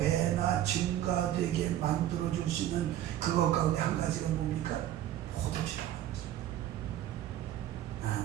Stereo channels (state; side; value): quieter; left; 12.3 dB